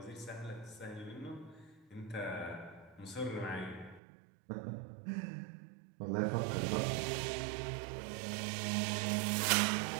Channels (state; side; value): drops out; left; at 4.0 s